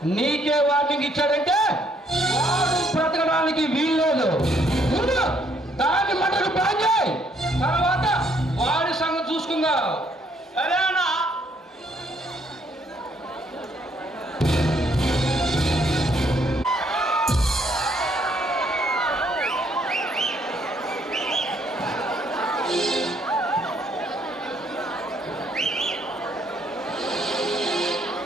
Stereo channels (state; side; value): normal; both; correlation 0.68